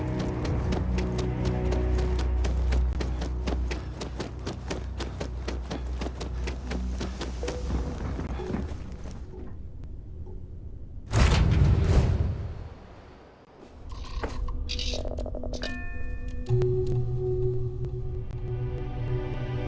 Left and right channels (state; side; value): identical; both; correlation 1.00